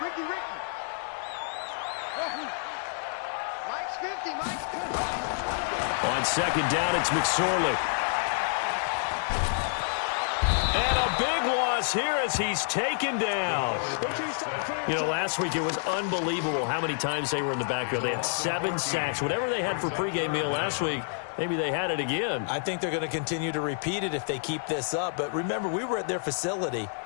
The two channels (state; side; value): silent; right; digital silence